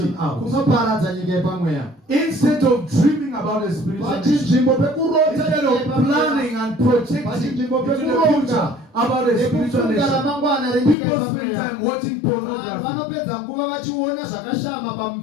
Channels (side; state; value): right; drops out; at 11.0 s